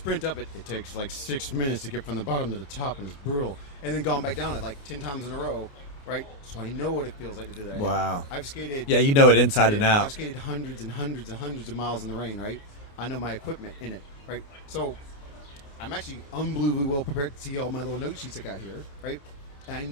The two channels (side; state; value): right; late; 29 ms